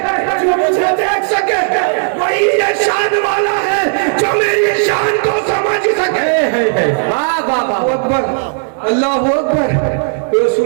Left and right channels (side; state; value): left; silent; digital silence